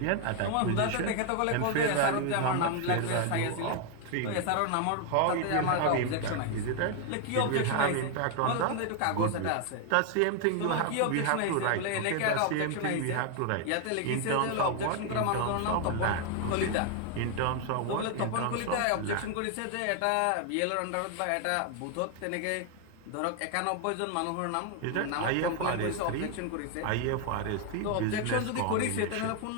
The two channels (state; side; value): different; both; correlation 0.00